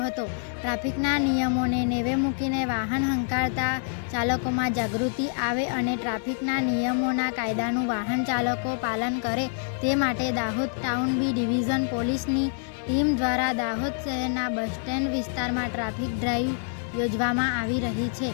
હતો. ટ્રાફિકના નિયમોને નેવે મૂકીને વાહન હંકારતા ચાલકોમાં જાગૃતિ આવે અને ટ્રાફિકના નિયમોના કાયદાનું વાહન ચાલકો પાલન કરે તે માટે દાહોદ ટાઉન બી ડિવિઝન પોલીસની ટીમ દ્વારા દાહોદ શહેરના બસ સ્ટેન્ડ વિસ્તારમાં ટ્રાફિક ડ્રાઈવ યોજવામાં આવી રહી છે.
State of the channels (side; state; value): right; silent; digital silence